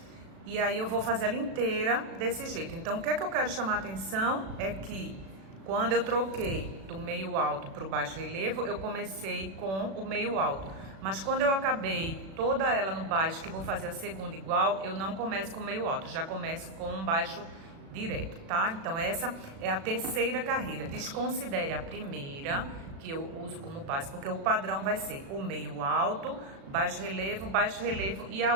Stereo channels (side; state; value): left; late; 36 ms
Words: E aí eu vou fazer ela inteira desse jeito. Então, o que é que eu quero chamar a atenção é que quando eu troquei do meio alto para o baixo relevo, eu comecei com o meio alto. Mas quando eu acabei toda ela no baixo, que vou fazer a segunda igual, eu não começo com meio alto, já começo com um baixo direto, tá? Então essa é a terceira carreira. Desconsidere a primeira, que eu uso como base, porque o padrão vai ser o meio alto, baixo relevo, e a